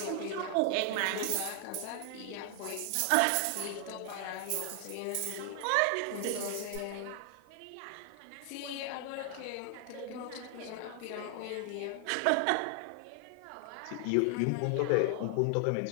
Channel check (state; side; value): different; both; correlation 0.00